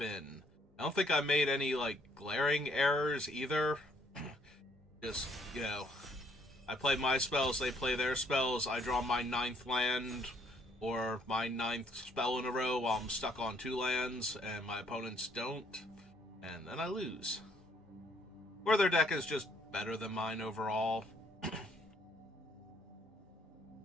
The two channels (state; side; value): normal; both; correlation 0.66